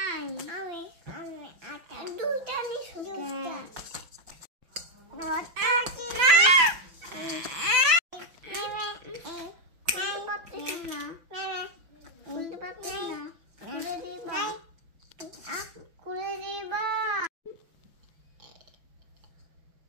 আচ্ছা দুইটা নিছো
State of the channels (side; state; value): left; late; 5.9 ms